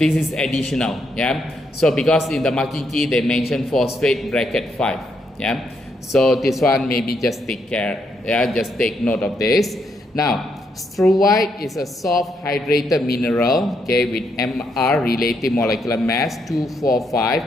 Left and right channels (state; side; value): normal; both; correlation 0.77